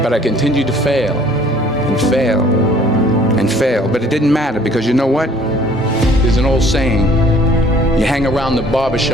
But I continued to fail, and fail, and fail. But it didn't matter, because you know what? There's an old saying, you hang around the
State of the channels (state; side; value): normal; both; correlation 0.55